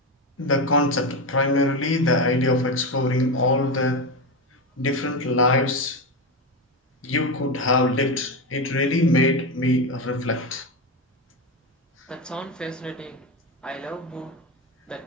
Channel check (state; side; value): normal; both; correlation 0.15